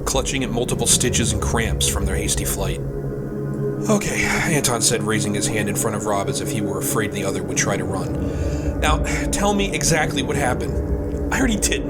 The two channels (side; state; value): both; identical; correlation 1.00